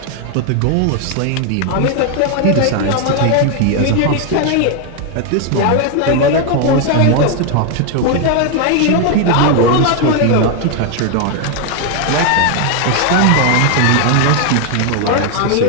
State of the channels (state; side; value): different; both; correlation 0.01